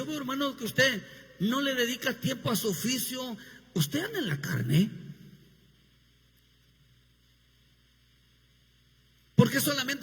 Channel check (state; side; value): identical; both; correlation 1.00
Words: veo, hermano, que usted no le dedica tiempo a su oficio, usted anda en la carne. Porque